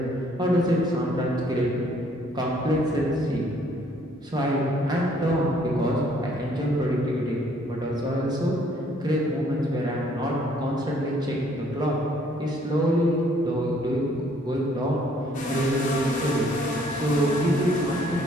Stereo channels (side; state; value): both; normal; correlation 0.63